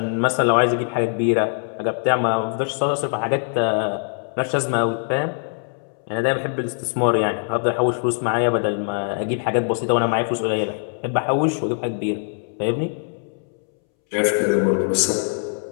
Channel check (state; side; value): silent; right; 64 dB below the other